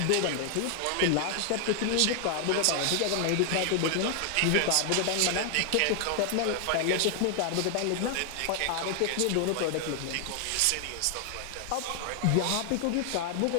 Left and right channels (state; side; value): different; both; correlation 0.00